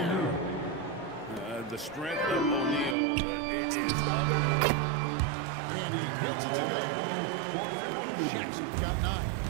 The strength of O'Neal is other. And he gets it to go. Jackson got 9.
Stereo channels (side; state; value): left; drops out; at 3.0 s